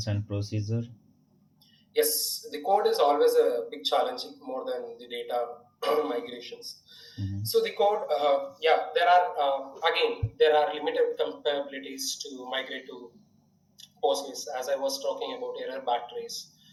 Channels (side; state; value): both; identical; correlation 1.00